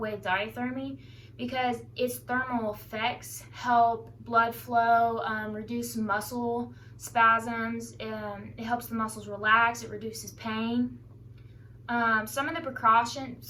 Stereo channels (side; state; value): both; identical; correlation 1.00